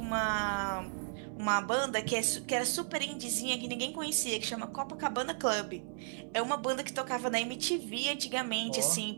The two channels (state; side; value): silent; left; 55 dB below the other